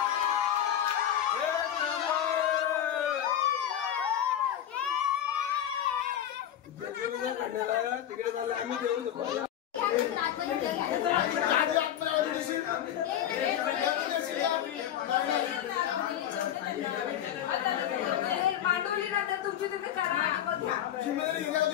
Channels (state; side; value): quieter; right; 10.6 dB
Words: तिकडे झालं आम्ही देऊ शकतो. मांडवली नंतर तुमची तुम्ही करा.